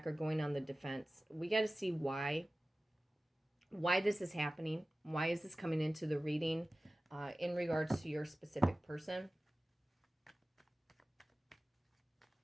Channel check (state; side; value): normal; both; correlation 0.97